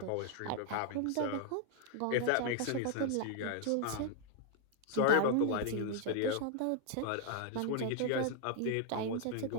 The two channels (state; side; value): different; both; correlation 0.00